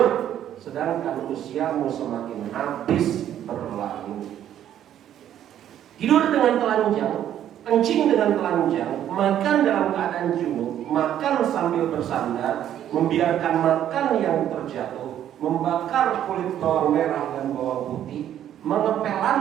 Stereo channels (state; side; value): quieter; left; 10.9 dB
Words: sedangkan usiamu semakin habis berlalu. Tidur dengan telanjang, kencing dengan telanjang, makan dalam keadaan junub, makan sambil bersandar, membiarkan makan yang terjatuh, membakar kulit bawang merah dan bawang putih, mengepel